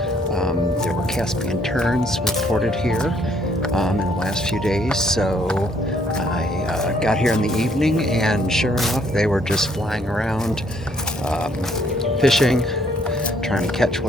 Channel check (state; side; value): normal; both; correlation 0.66